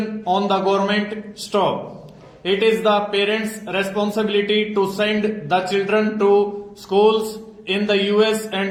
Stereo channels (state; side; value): identical; both; correlation 1.00